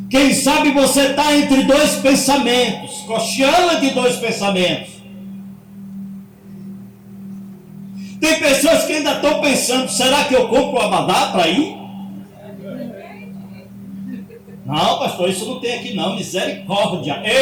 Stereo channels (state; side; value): identical; both; correlation 1.00